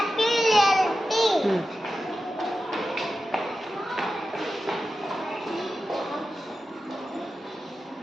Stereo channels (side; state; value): both; normal; correlation 0.92